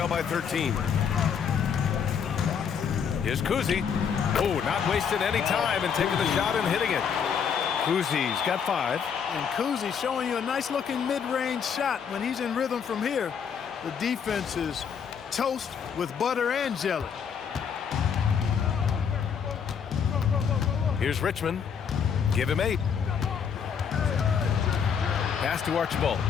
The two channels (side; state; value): right; quieter; 7.1 dB